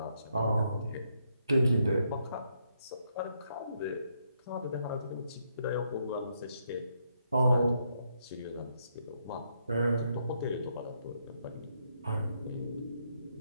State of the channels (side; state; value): both; inverted; correlation -0.77